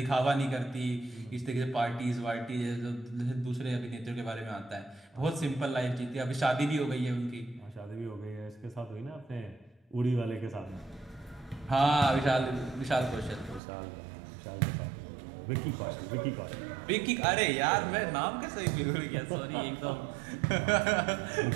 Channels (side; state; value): left; drops out; at 13.6 s